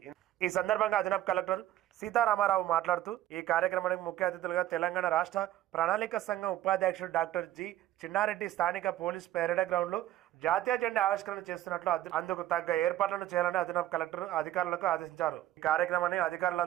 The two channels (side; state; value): left; quieter; 13.7 dB